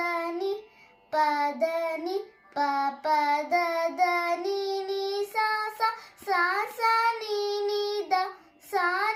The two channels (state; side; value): identical; both; correlation 1.00